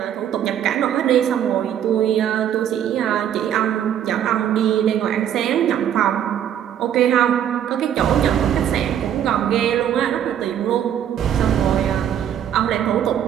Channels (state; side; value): quieter; left; 9.9 dB